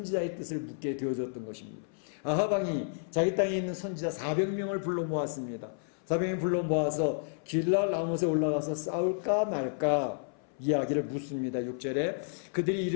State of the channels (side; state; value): right; silent; 57 dB below the other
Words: 뜻을 묻게 되어졌던 것입니다. 아합 왕이 자기 땅에 있는 선지자 400명을 불러 모았습니다. 400명 불러 모아서 길랄 라못에 올라가서 싸울까 말까 이야기를 묻습니다. 6절에 그들이